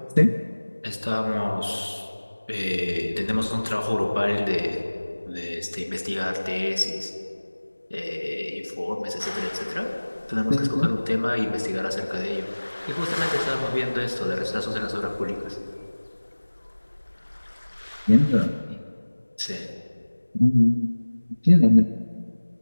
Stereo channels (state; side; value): inverted; both; correlation -1.00